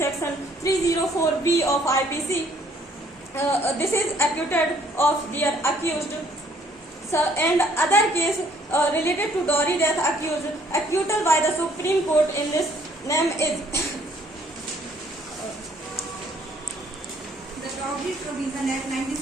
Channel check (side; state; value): both; normal; correlation 0.63